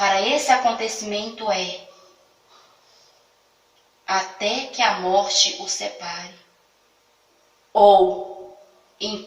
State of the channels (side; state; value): both; identical; correlation 1.00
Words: esse acontecimento é até que a morte o separe, ou